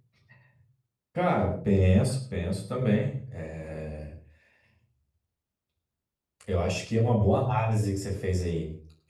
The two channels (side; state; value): both; identical; correlation 1.00